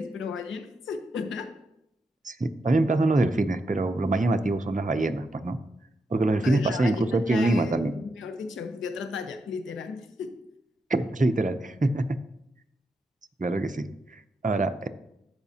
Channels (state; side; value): normal; both; correlation 0.83